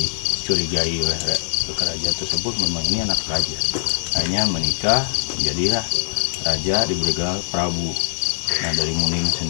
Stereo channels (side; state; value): right; silent; digital silence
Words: oleh kerajaan tersebut memang ini anak raja. Akhirnya menikah, menjadilah raja, diberi gelar Prabu. Nah, dari Munding